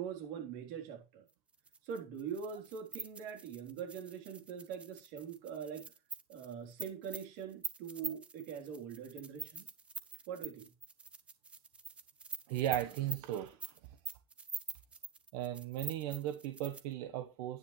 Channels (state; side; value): quieter; left; 8.5 dB